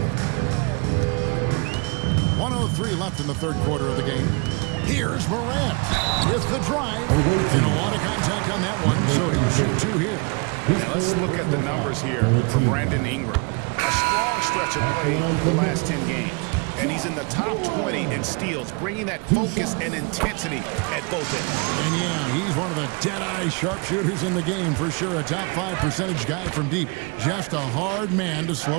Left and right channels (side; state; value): left; quieter; 31.1 dB